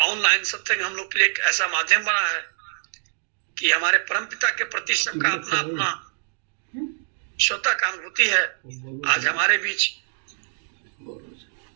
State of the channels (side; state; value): left; silent; digital silence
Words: सत्संग हम लोग के लिए एक ऐसा माध्यम बना है कि हमारे परमपिता के प्रति सबका अपना अपना स्वतः का अनुभूति है। आज हमारे बीच